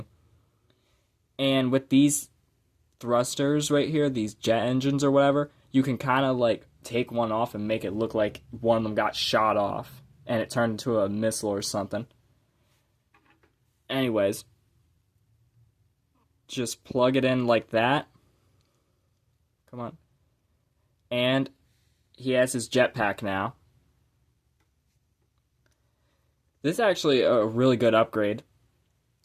And with these thrusters right here, these jet engines or whatever, you can kind of like take one off and make it look like one of them got shot off. And it turned into a missile or something. Anyways. Just plug it in like that. Come on. And he has his jetpack now. This is actually a really good upgrade.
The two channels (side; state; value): both; identical; correlation 1.00